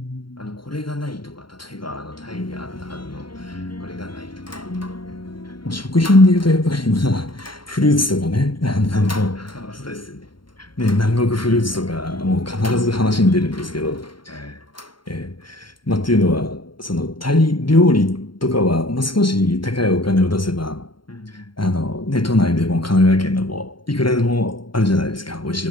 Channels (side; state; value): right; late; 0.73 ms